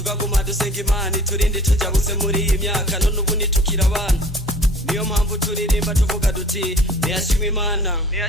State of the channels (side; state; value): both; normal; correlation 0.48